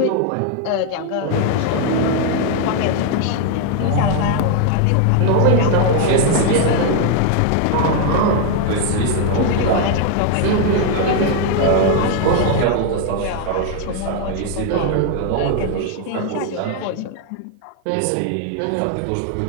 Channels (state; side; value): different; both; correlation 0.01